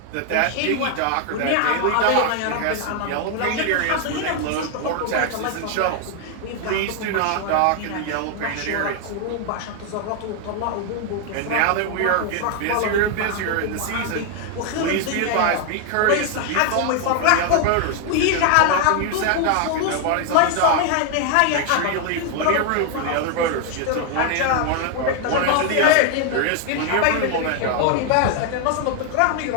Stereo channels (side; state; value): both; different; correlation 0.01